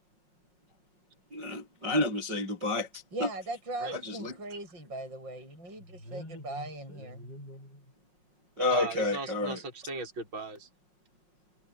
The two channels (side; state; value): left; late; 5.5 ms